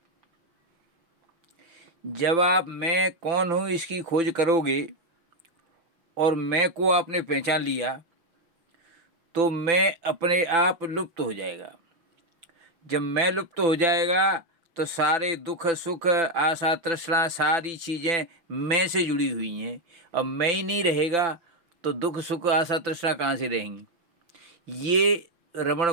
जब आप मैं कौन हूँ इसकी खोज करोगे और मैं को आपने पहचान लिया तो मैं अपने आप लुप्त हो जाएगा। जब मैं लुप्त हो जाएगा तो सारे दुख सुख आशा तृष्णा सारी चीज़ें मैं से जुड़ी हुई हैं। अब मैं ही नहीं रहेगा तो दुख सुख आशा तृष्णा कहाँ से रहेंगी। ये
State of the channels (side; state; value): left; late; 6.0 ms